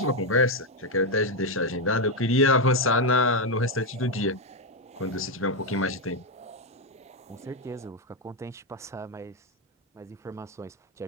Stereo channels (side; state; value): both; normal; correlation 0.05